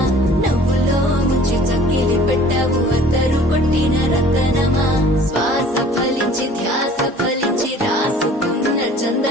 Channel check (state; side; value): normal; both; correlation 0.50